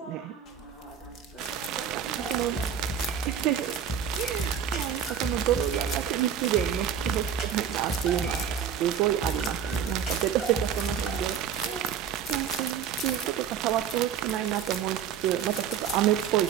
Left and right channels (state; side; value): quieter; left; 8.3 dB